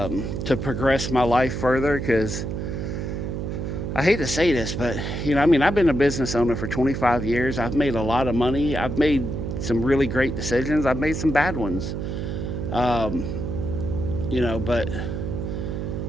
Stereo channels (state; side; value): noise; right; hum, 3 dB below the sound